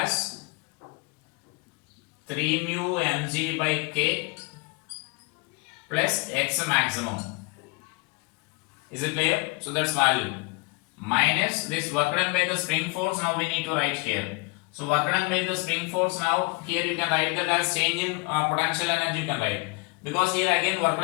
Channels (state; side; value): quieter; right; 28.1 dB